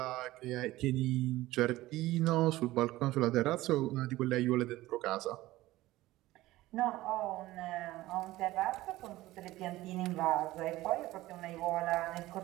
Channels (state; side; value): quieter; left; 17.3 dB